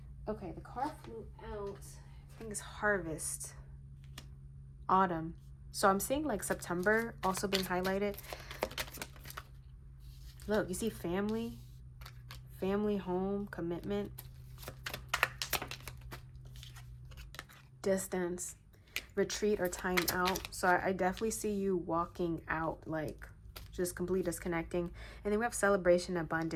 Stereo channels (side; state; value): both; identical; correlation 1.00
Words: Okay, the card flew out. I think it's Harvest. Autumn. So I'm seeing like September also being highlighted. Look, you see family, home, commitment, distance, retreat, or time out. So I definitely see you walking out, like just completely disconnecting. And then we have celebration,